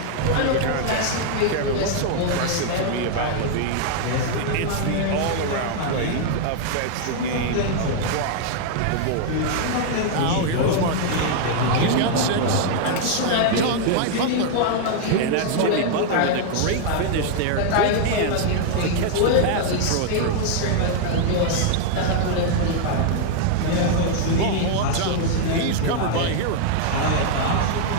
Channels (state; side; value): different; both; correlation 0.00